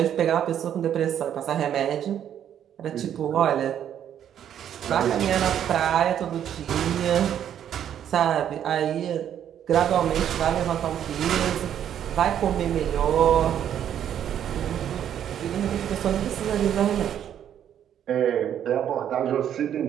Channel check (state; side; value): quieter; left; 9.8 dB